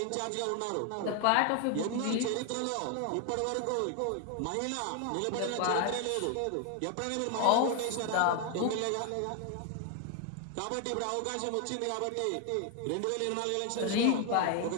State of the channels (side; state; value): both; different; correlation 0.00